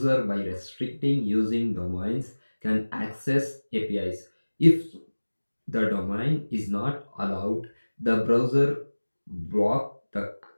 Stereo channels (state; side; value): inverted; both; correlation -1.00